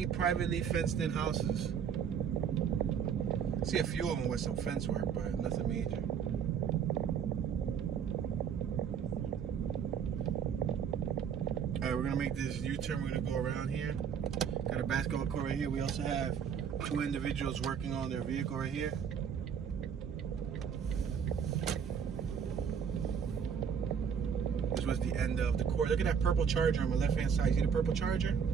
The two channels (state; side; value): quieter; left; 7.4 dB